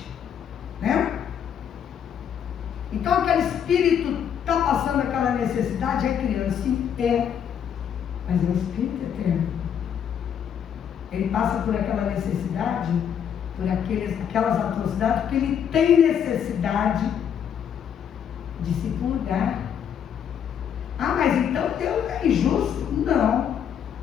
né? Então aquele espírito está passando aquela necessidade, é criança, sim, mas é um espírito eterno. Ele passa por aquela necessidade, por aquelas atrocidades, porque ele tem necessidade de se purgar. Ah, mas então Deus é injusto? Não.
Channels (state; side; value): quieter; right; 8.5 dB